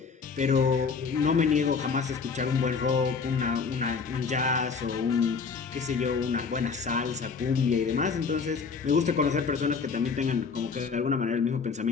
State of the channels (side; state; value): right; quieter; 5.3 dB